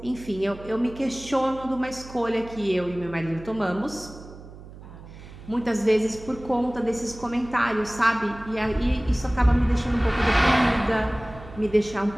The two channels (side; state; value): right; noise; hum, 17 dB below the sound